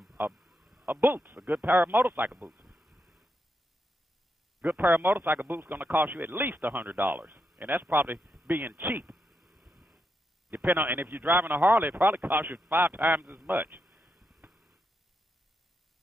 of boots, a good pair of motorcycle boots. Good pair of motorcycle boots is going to cost you at least $100. And that's probably being cheap. Depending on, and if you're driving a Harley, it probably costs you 5 times as much.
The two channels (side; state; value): both; normal; correlation 0.83